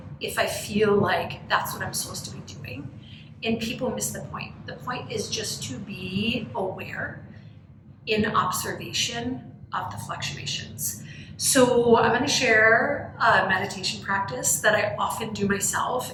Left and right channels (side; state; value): both; identical; correlation 1.00